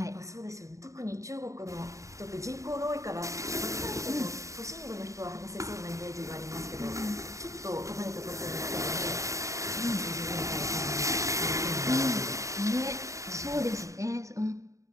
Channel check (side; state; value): left; late; 0.15 ms